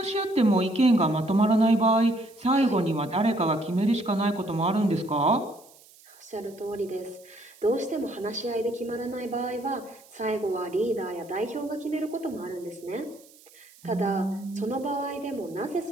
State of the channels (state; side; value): noise; right; hiss, 25 dB below the sound